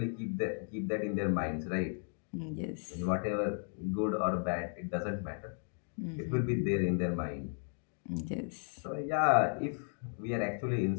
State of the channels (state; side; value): silent; right; 54 dB below the other